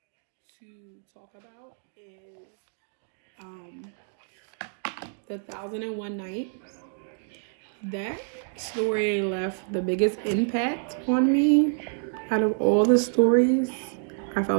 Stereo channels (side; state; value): left; silent; 60 dB below the other